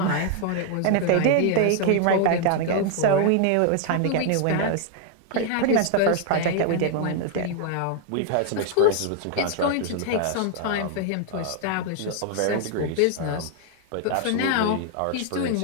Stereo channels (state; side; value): different; both; correlation 0.00